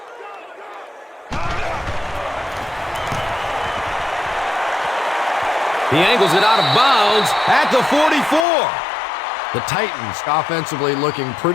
He angles it out of bounds at the 44. The Titans offensively looking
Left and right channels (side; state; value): right; drops out; at 8.5 s